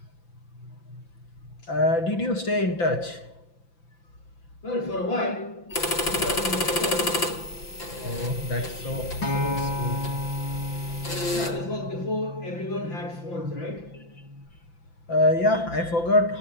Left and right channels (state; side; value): late; right; 5.9 ms